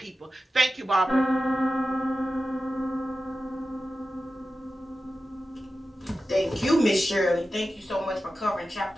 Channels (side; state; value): both; normal; correlation 0.93